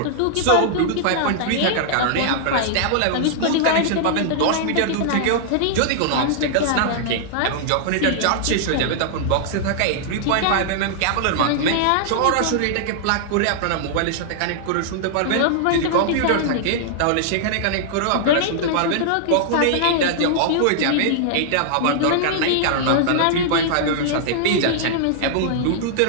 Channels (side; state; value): both; different; correlation -0.01